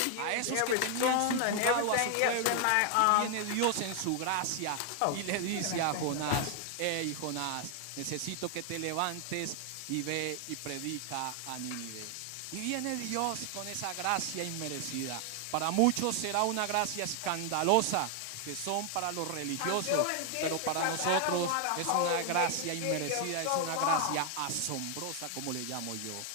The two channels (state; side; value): different; both; correlation 0.00